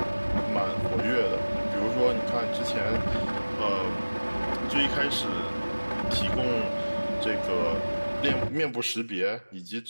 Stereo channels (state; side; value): inverted; both; correlation -1.00